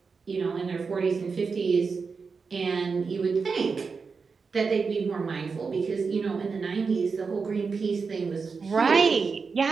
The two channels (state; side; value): quieter; left; 5.0 dB